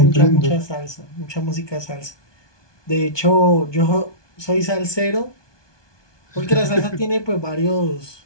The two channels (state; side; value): late; right; 1.2 ms